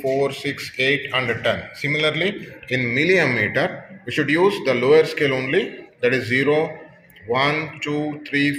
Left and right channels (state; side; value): identical; both; correlation 1.00